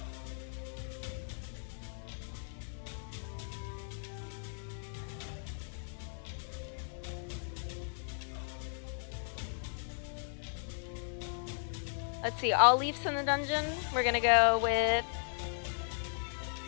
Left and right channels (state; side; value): silent; right; digital silence